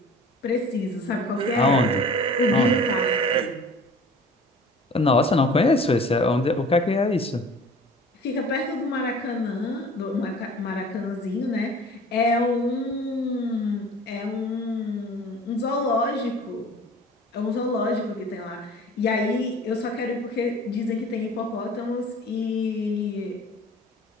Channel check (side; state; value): both; normal; correlation 0.45